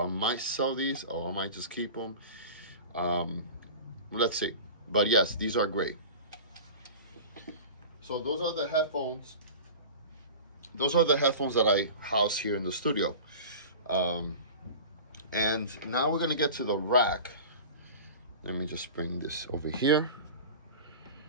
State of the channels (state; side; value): inverted; both; correlation -0.35